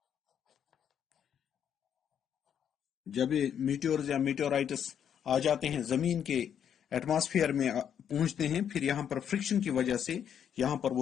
جب یہ میٹیورز یا میٹیورائٹس آ جاتے ہیں زمین کے ایٹماسفیئر میں پہنچتے ہیں, پھر یہاں پر فرکشن کی وجہ سے یہاں پر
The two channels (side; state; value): right; quieter; 8.7 dB